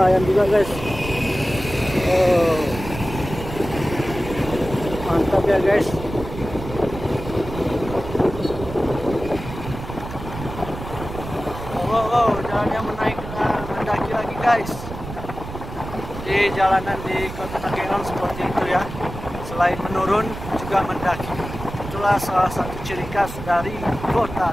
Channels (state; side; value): noise; right; rumble, 10 dB below the sound